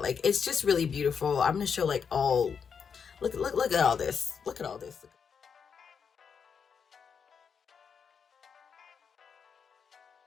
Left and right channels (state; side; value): quieter; right; 6.5 dB